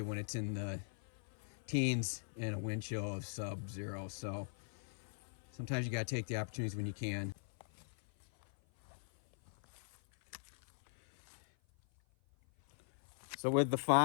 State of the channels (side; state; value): right; silent; 51 dB below the other